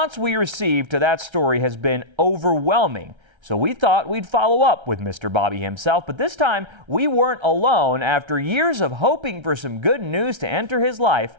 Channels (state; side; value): late; left; 1.3 ms